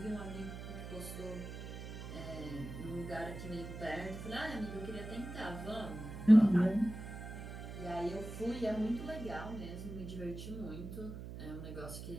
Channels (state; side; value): noise; right; hum, 9 dB below the sound